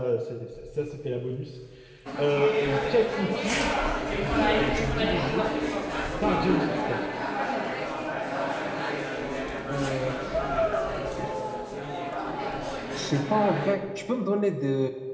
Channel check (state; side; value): identical; both; correlation 1.00